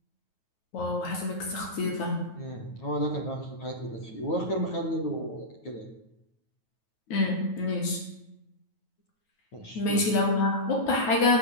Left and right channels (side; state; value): right; late; 9.2 ms